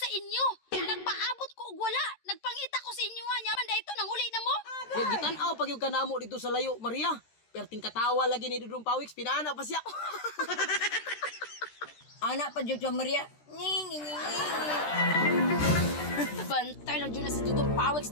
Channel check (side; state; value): right; late; 13 ms